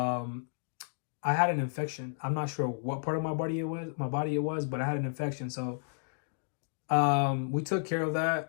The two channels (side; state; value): right; silent; digital silence